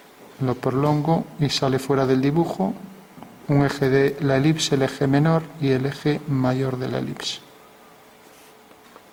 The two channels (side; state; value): both; identical; correlation 1.00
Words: Lo prolongo y sale fuera del dibujo un eje de la elipse, el eje menor y el eje mayor de la elipse.